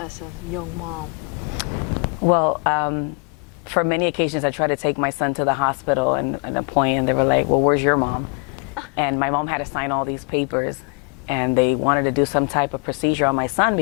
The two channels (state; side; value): quieter; right; 34.4 dB